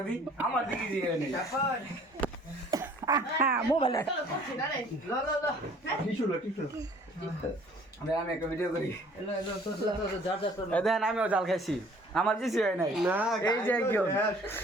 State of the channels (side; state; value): both; normal; correlation 0.54